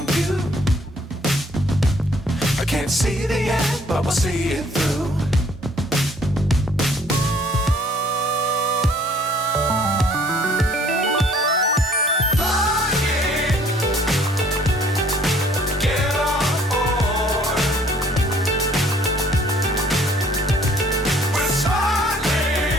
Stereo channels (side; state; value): both; normal; correlation 0.59